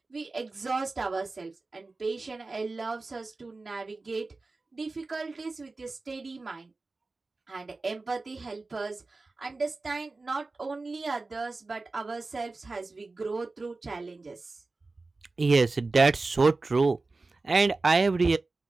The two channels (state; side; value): quieter; left; 3.5 dB